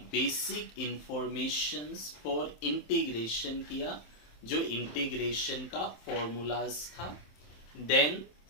बेसिक इंफॉर्मेशंस फॉर इंटीग्रेशन किया, जो इंटीग्रेशन का फॉर्मूलाज था. देन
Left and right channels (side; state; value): right; late; 27 ms